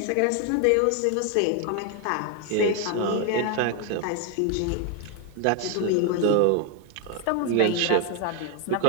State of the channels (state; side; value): different; both; correlation 0.01